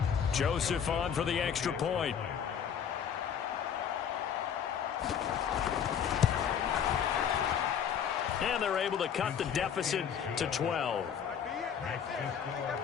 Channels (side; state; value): right; quieter; 8.0 dB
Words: Joseph on for the extra point. And they're able to cut the deficit to 12.